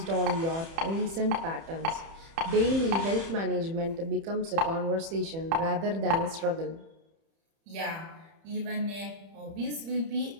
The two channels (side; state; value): left; late; 30 ms